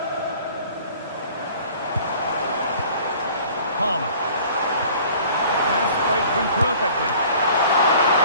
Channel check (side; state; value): both; inverted; correlation -0.50